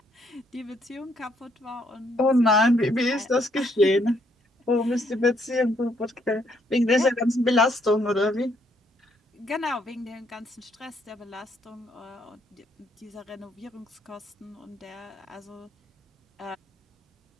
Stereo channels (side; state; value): both; normal; correlation 0.71